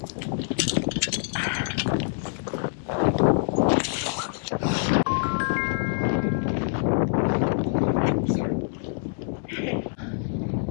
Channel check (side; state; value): right; silent; digital silence